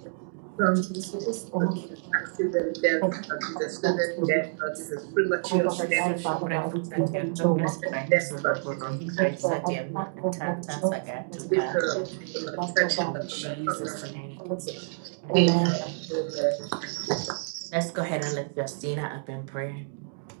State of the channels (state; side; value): silent; left; digital silence